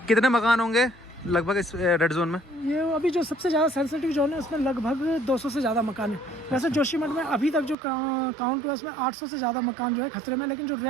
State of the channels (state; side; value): drops out; left; at 7.8 s